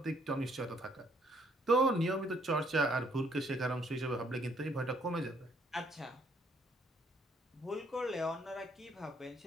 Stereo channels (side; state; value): both; normal; correlation 0.66